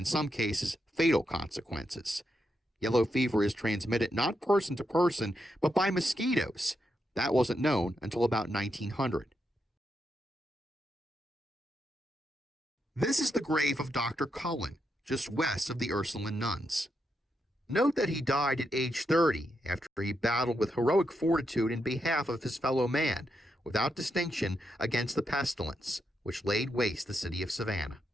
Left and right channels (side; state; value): both; normal; correlation 0.83